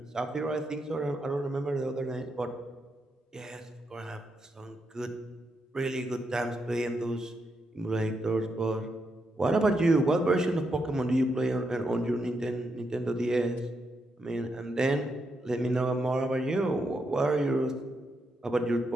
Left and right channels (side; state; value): both; normal; correlation 0.82